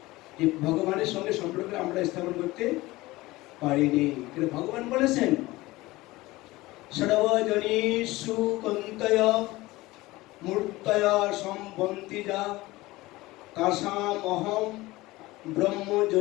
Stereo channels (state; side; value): quieter; right; 19.5 dB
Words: যে ভগবানের সঙ্গে সম্পর্ক আমরা স্থাপন করতে পারিনি। কিন্তু ভগবান বলেছেন সর্বজনীষু কন্তয় মূর্তয় সম্বন্তি যা তাসাম অহম